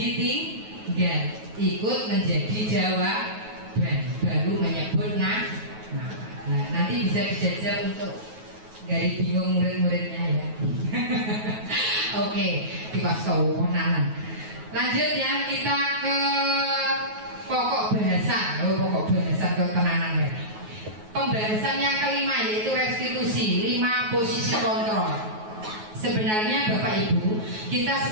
Ikut menjadi jawaban, baru menyebut nah, nanti bisa dijajal untuk dari bingung murid-muridnya ya. Oke, dipasau-nanan. Lanjut ya, kita ke pokok bahasa. Pokok bahasa ke tenanan ya. Pembahasan yang kelima yaitu restitusi, 5 posisi kontrol. Sebenarnya Bapak Ibu, kita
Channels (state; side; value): late; left; 9.3 ms